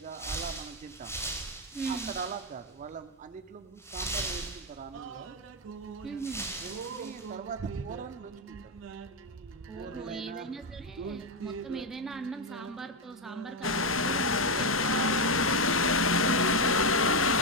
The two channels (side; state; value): both; normal; correlation 0.06